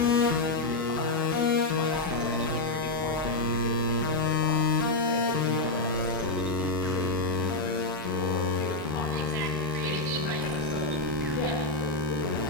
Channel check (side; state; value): right; quieter; 3.2 dB